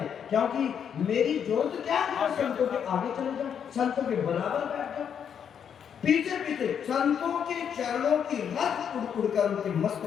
क्योंकि मेरी जरूरत क्या है? संतों के आगे चले जाओ, संतों के बराबर बैठ जाओ, पीछे पीछे संतों के चरणों की रस उड़ उड़कर उनके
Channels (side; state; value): right; quieter; 8.0 dB